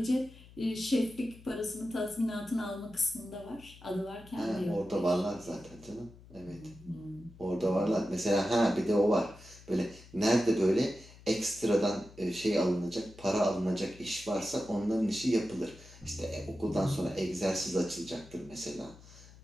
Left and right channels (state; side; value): noise; left; hum, 21 dB below the sound